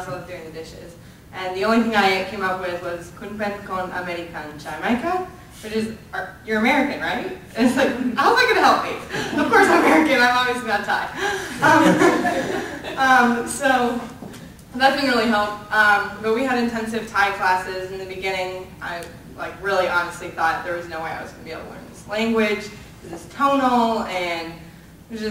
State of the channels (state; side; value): identical; both; correlation 1.00